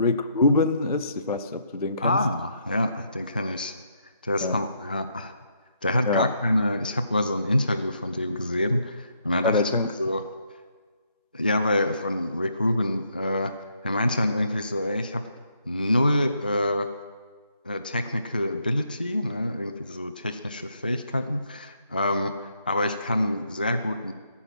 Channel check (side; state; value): both; inverted; correlation -0.73